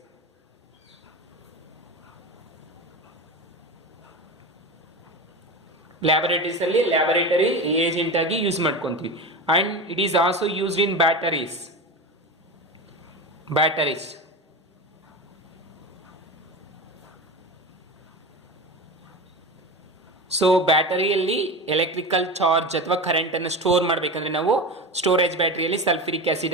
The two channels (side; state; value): both; normal; correlation 0.25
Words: ಅಲ್ಲಿ laboratory reagent ಆಗಿ use ಮಾಡ್ಕೊಂತೀವಿ. And it is also used in batteries. So ಬ್ಯಾಟರಿಯಲ್ಲಿ electrical charge ಅಥವಾ current ಅನ್ನು store ಮಾಡಬೇಕಂದ್ರೆ ನಾವು storage ಬ್ಯಾಟರಿಯಲ್ಲಿ sulphuric